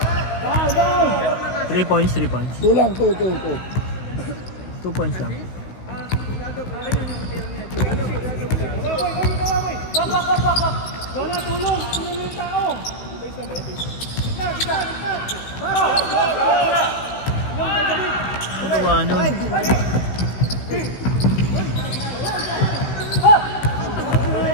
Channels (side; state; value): right; late; 16 ms